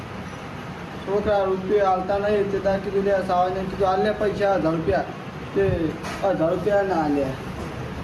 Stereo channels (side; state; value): both; identical; correlation 1.00